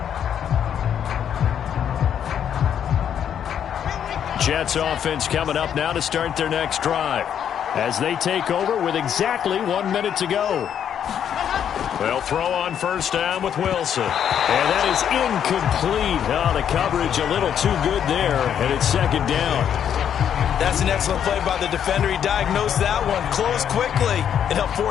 Jets offense coming up now to start their next drive as they take over with exactly 1 minute to go. They'll throw on first down with Wilson. And that is incomplete. Oh, the coverage a little too good there, and it's second down. That's an excellent play by the defender. He diagnosed that one, closed quickly, and helped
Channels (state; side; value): quieter; right; 9.0 dB